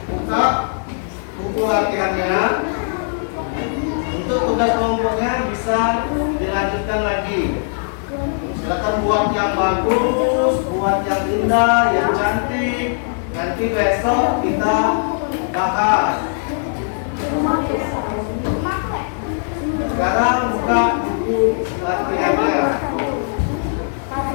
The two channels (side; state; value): right; silent; digital silence